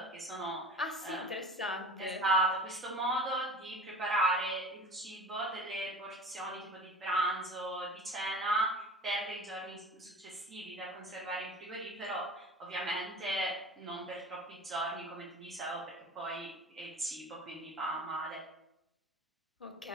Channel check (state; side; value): normal; both; correlation 0.37